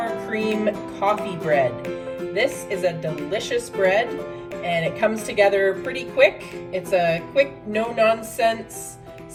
cream coffee bread. This is a delicious bread and it comes together pretty quick. It's a quick, no-nonsense,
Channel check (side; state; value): both; identical; correlation 1.00